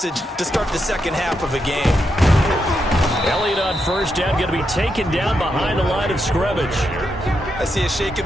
to start the second half of a game. Elliott on first down, going to be taken down behind the line of scrimmage. I see a shake of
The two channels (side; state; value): both; normal; correlation 0.83